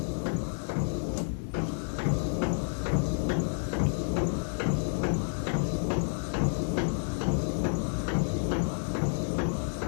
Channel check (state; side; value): silent; right; digital silence